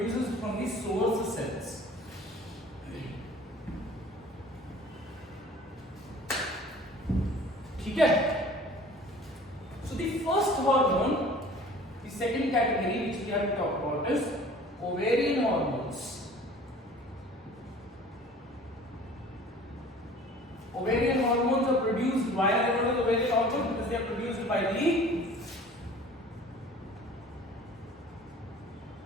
from the source cells. ठीक है. So the first hormone, the second category which we have to talk about is ovarian hormones. Ovarian hormones are produced, why are they called ovarian hormones? Because they are produced by the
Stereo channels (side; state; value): both; normal; correlation 0.47